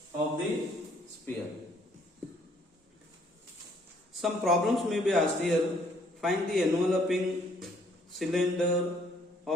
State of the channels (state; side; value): normal; both; correlation 0.64